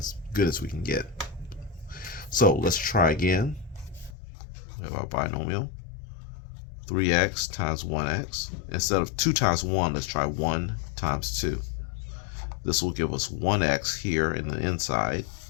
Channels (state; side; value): drops out; right; at 4.2 s